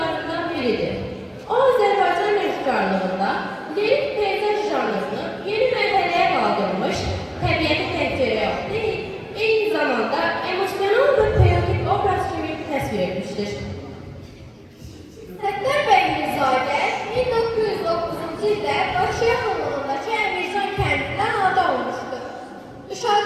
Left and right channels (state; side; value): identical; both; correlation 1.00